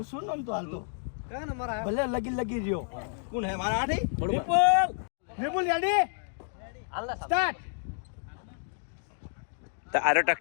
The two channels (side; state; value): right; silent; digital silence